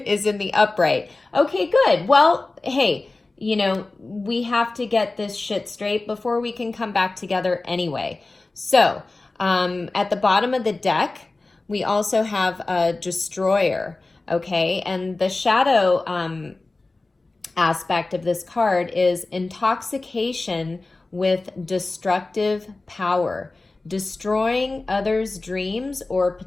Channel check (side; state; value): right; quieter; 3.3 dB